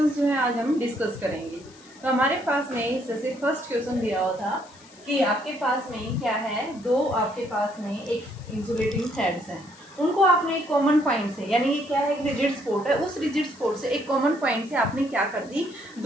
जो है आज हम डिस्कस करेंगे। तो हमारे पास में जैसे फर्स्ट क्वेश्चन दिया हुआ था कि आपके पास में क्या है, दो आपके पास में एक इंसुलेटिंग थ्रेड्स हैं, उनको आपने एक कॉमन पॉइंट से यानी ये क्या है, एक रिजिड स्पॉट है, उस रिजिड स्पॉट से एक कॉमन पॉइंट से आपने क्या कर दी,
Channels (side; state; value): left; noise; hiss, 24 dB below the sound